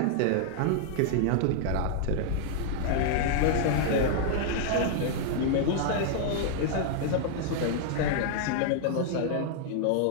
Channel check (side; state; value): both; different; correlation -0.01